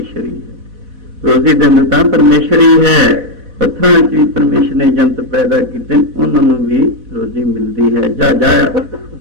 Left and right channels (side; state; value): left; late; 4.1 ms